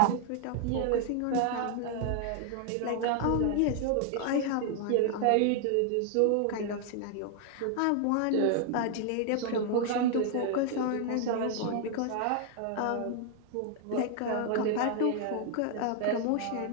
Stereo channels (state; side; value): different; both; correlation 0.00